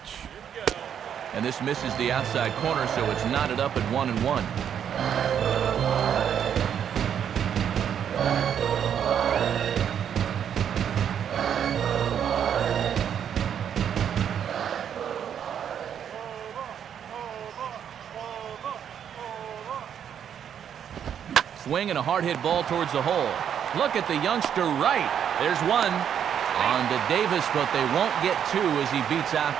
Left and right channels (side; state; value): left; quieter; 8.7 dB